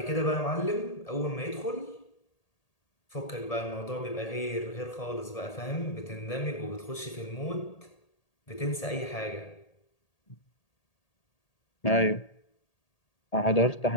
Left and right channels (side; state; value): right; late; 1.8 ms